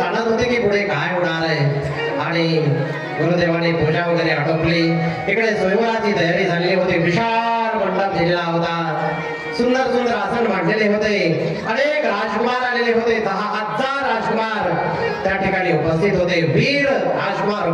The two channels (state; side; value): identical; both; correlation 1.00